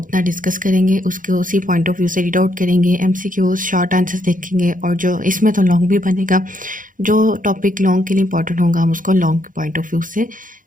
ڈسکس کریں گے، اس کو اسی پوائنٹ آف ویو سے ریڈ آؤٹ کریں گے، MCQs شارٹ آنسرز دیکھیں گے، اور جو اس میں تو لانگ بھی بنے گا، جو ٹاپک لانگ کے لیے امپورٹنٹ ہوگا ہم اس کو لانگ کے پوائنٹ آف ویو سے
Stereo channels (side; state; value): left; late; 0.39 ms